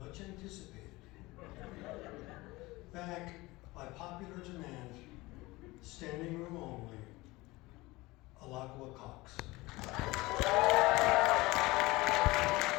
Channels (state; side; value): quieter; right; 21.1 dB